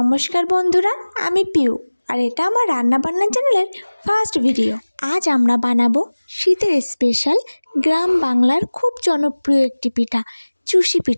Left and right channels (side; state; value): both; inverted; correlation -1.00